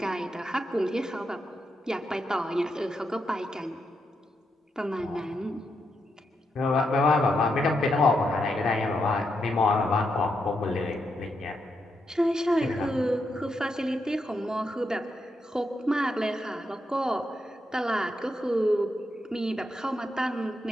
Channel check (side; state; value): both; normal; correlation 0.82